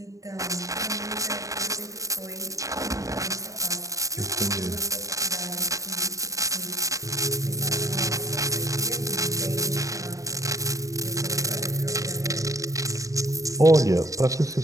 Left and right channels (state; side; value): late; left; 0.16 ms